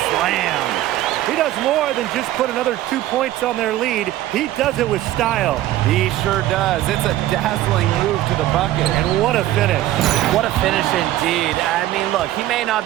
slam. He does more than just put another 2 points on their lead. He does it with style. He sure does. It's a dazzling move to the bucket. And what a finish. What a finish indeed. I mean, look, he may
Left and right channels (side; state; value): left; quieter; 14.5 dB